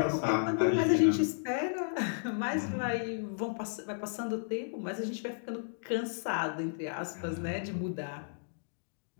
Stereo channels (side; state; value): right; silent; digital silence